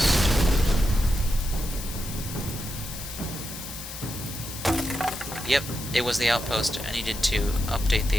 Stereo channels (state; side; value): noise; left; hiss, 10 dB below the sound